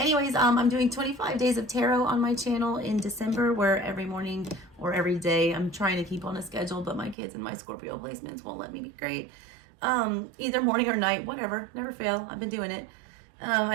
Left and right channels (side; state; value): left; drops out; at 7.2 s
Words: I'm doing 25 days of tarot on my channel in December, where every morning or every day I'm trying to keep on a schedule, but my kids and my Scorpio placements won't let me be great. Either morning or night, whatever. Never fail. I've been doing it.